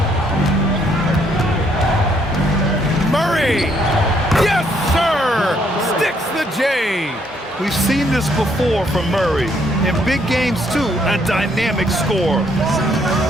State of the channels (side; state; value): both; normal; correlation 0.70